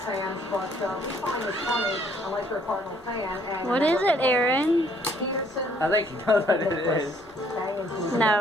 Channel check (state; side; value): normal; both; correlation 0.64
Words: but we find it funny unless you're a Cardinal fan. And what is it, Aaron? I think you know what it is.